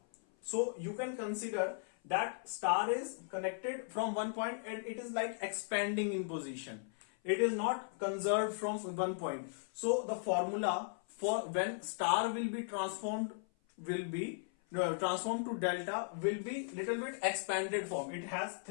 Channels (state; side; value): silent; right; 53 dB below the other